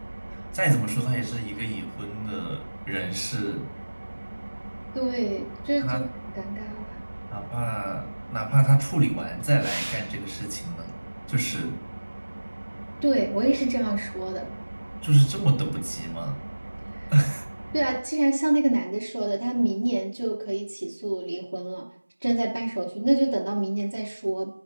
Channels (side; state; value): both; inverted; correlation -1.00